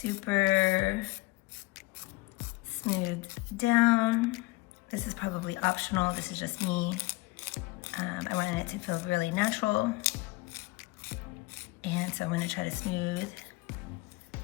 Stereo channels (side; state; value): right; quieter; 22.0 dB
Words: smooth down. This is probably optional, this is just me. I wanted it to feel really natural. And so I'm gonna try to smooth